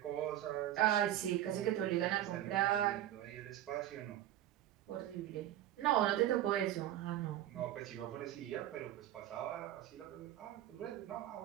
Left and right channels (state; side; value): quieter; left; 12.8 dB